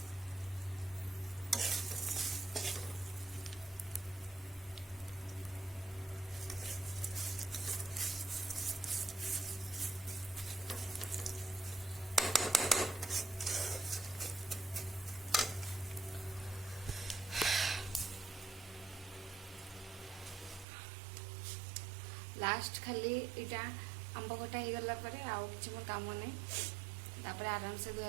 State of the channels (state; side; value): drops out; left; at 20.7 s